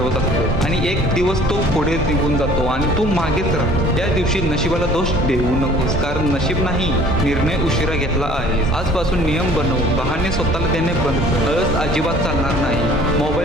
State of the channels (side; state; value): both; normal; correlation 0.51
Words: असतो आणि एक दिवस तो पुढे निघून जातो आणि तू मागेच राहतो. त्या दिवशी नशिबाला दोष देऊ नकोस, कारण नशीब नाही, निर्णय उशिरा घेतला आहे. आजपासून नियम बनव, बहाणे स्वतःला देणे बंद कर. आळस अजिबात चालणार नाही.